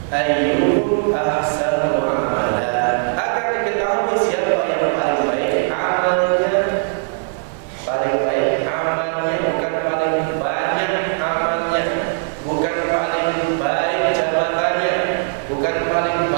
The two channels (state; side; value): silent; left; digital silence